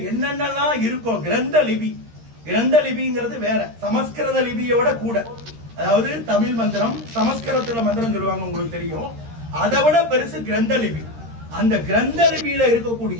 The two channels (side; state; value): left; late; 13 ms